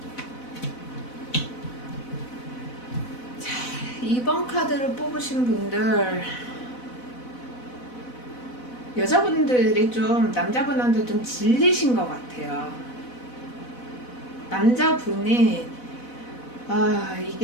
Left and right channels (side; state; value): right; late; 4.0 ms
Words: 자, 2번 카드를 뽑으신 분들, 여자분들이 좀 남자분한테 좀 질리신 것 같아요. 남자분이